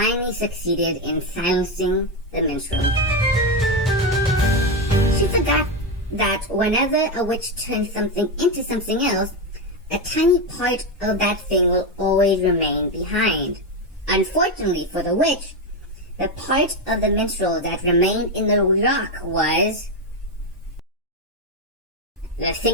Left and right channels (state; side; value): normal; both; correlation 0.10